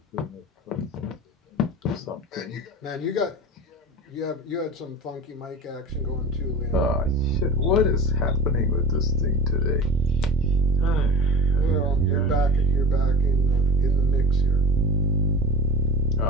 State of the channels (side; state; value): both; normal; correlation 0.32